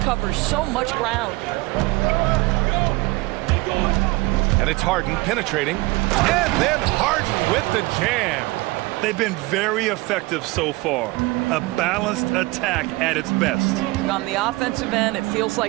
covers so much ground. And it's Harden penetrating. And then Harden with the jam. They've been very effective so far. A balanced attack at its best. On the offensive end, it feels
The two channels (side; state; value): left; quieter; 22.3 dB